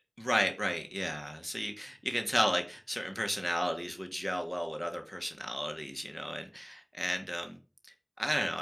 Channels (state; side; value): identical; both; correlation 1.00